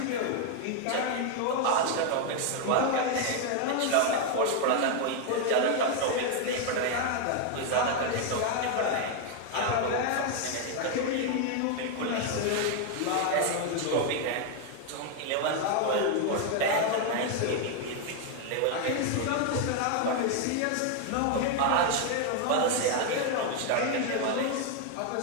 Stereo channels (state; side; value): different; both; correlation 0.01